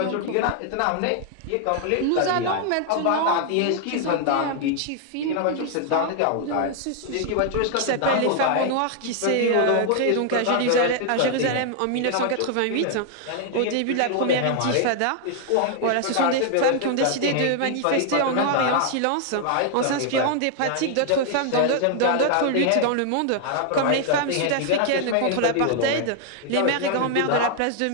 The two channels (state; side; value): different; both; correlation 0.00